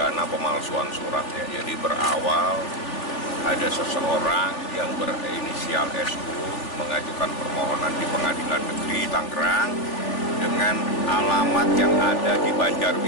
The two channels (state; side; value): late; right; 3.4 ms